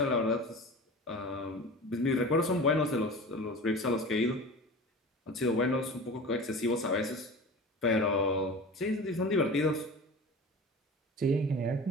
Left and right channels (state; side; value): normal; both; correlation 0.35